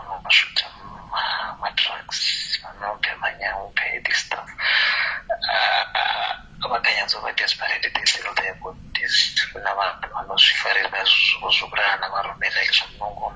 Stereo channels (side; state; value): both; identical; correlation 1.00